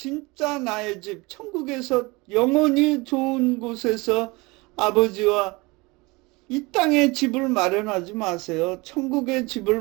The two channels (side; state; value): left; quieter; 24.7 dB